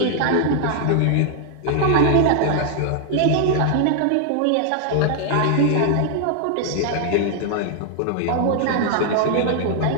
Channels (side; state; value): both; different; correlation 0.00